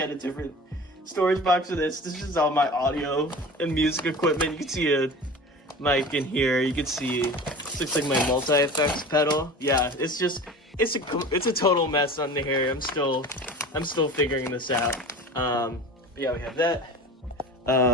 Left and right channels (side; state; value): both; normal; correlation 0.36